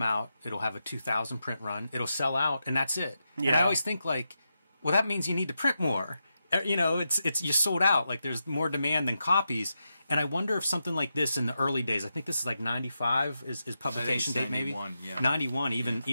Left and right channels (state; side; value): inverted; both; correlation -0.87